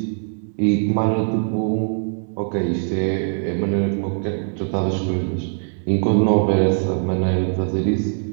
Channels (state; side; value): silent; left; digital silence